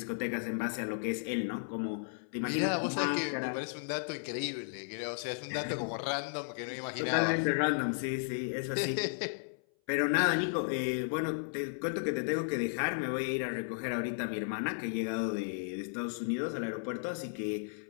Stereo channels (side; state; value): right; silent; 55 dB below the other